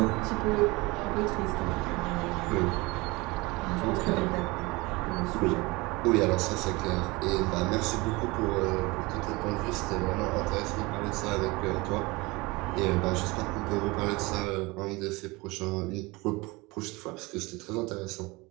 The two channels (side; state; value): left; quieter; 23.8 dB